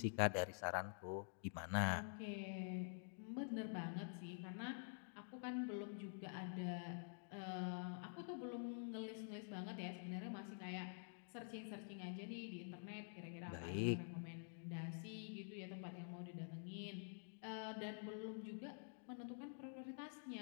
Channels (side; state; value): right; silent; digital silence